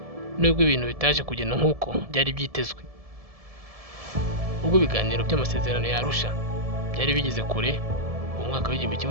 nubwo ibintu bitaje kugenda nk'uko byari byitezwe. Ubwo ibiganiro by'amasezerano ya Arusha byari bigeze kure mu mwaka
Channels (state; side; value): late; left; 1.7 ms